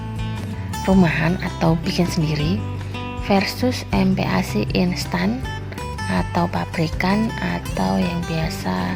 rumahan atau bikin sendiri versus MPASI instan atau pabrikan atau yang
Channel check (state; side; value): identical; both; correlation 1.00